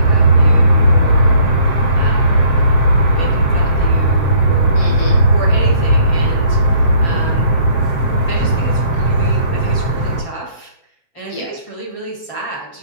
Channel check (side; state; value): right; late; 7.5 ms